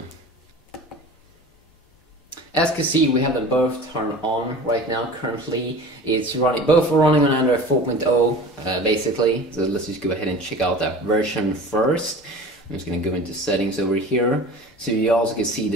As you can see, we have them both turned on right now. Currently, it's running. Both are running on Android 4.0, basically. So let's just go ahead and check out that version first. I'm just going to go into settings over here, so you also can see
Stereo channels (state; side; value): normal; both; correlation 0.38